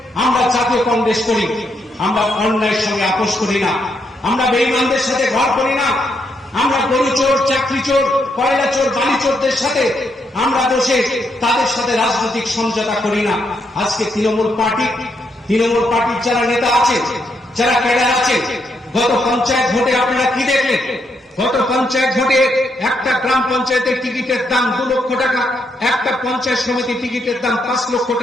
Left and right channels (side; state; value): both; normal; correlation 0.78